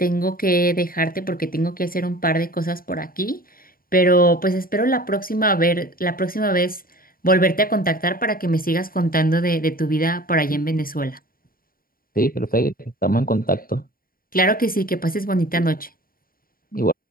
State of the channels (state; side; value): late; right; 0.42 ms